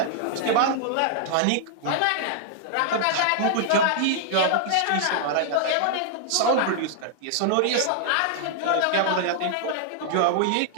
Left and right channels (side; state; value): both; different; correlation -0.01